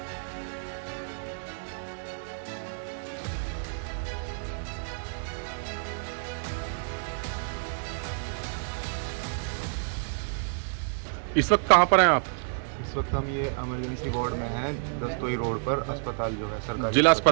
इस वक्त कहाँ पर हैं आप? इस वक्त हम ये इमरजेंसी वार्ड में हैं, दस्तोई रोड पर अस्पताल जो है सरकारी जिला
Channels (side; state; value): left; silent; digital silence